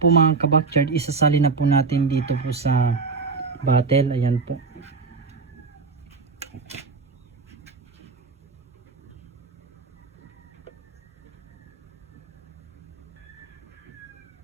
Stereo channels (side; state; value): left; quieter; 4.5 dB